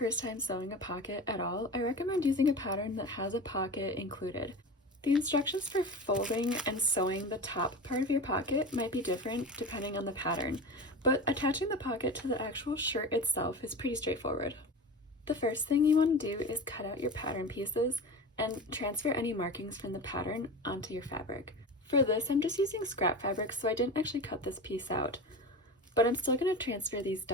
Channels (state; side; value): normal; both; correlation 0.30